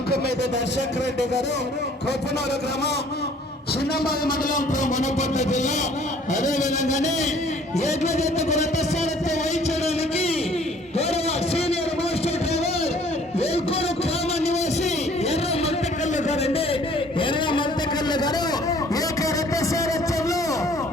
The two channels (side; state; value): both; normal; correlation 0.56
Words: మీద దర్శక్ రెడ్డి గారు, కోపనూరు గ్రామం, చిన్నబాయి మండలం, వనపర్తి జిల్లా. అదేవిధంగానే ఏడ్ల జతకు రథసారథ్యం వహించడానికి గౌరవ సీనియర్ మాస్టర్ డ్రైవర్ వేల్కూరు గ్రామ నివాసి ఎర్ర మల్తకల్లు గారండి. ఎర్ర మల్తకల్లు గారు ఏక రథసారథ్యంలో